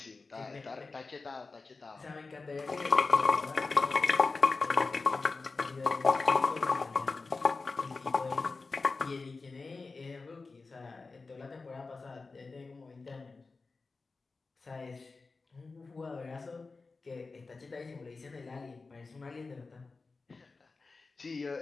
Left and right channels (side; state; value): right; quieter; 4.0 dB